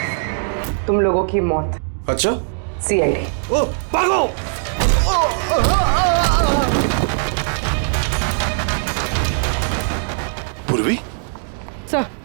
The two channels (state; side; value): silent; left; digital silence